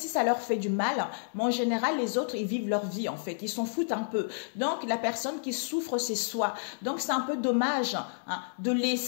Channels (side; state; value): right; silent; 58 dB below the other